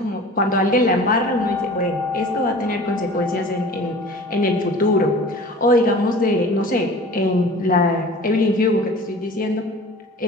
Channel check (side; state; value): both; normal; correlation 0.41